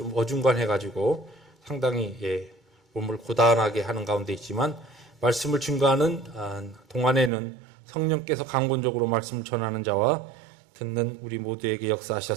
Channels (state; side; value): drops out; left; at 7.3 s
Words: 어중간해가지고 상당히 몸을 고단하게 하는 가운데 있지만 말씀을 증거하는 동안에는 성령께서 강권적으로 말씀을 전하는 자와 듣는 우리 모두에게